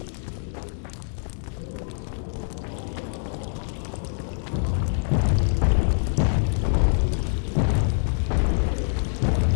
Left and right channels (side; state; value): right; silent; 62 dB below the other